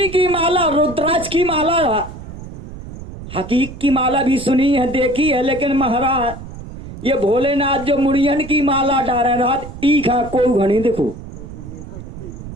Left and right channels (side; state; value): right; noise; rumble, 13 dB below the sound